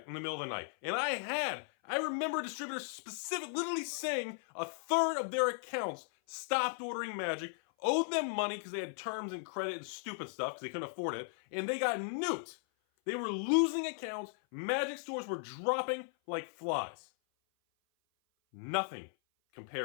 in the middle of the night. And I remember distributors literally saying a third of their accounts stopped ordering Magic, owed them money because they had terms and credit and stupid stuff because they couldn't afford it, and they got nuked. They were losing accounts. Magic stores were dropping like flies. Nothing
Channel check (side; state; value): right; silent; 53 dB below the other